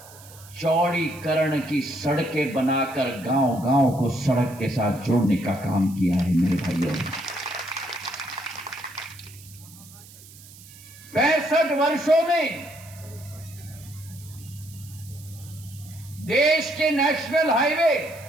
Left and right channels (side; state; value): right; noise; hiss, 20 dB below the sound